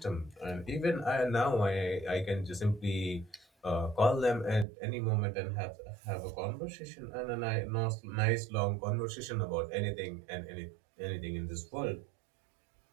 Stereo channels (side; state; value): left; drops out; at 4.7 s